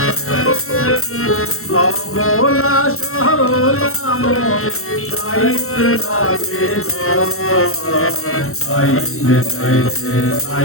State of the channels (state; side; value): late; right; 0.62 ms